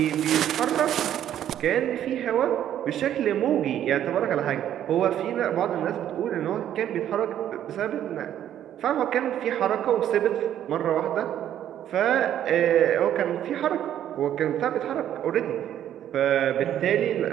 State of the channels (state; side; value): quieter; left; 10.9 dB